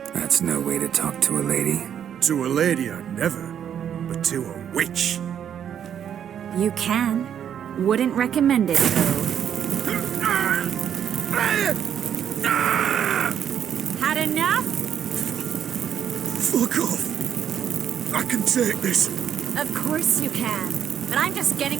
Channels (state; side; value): quieter; left; 9.0 dB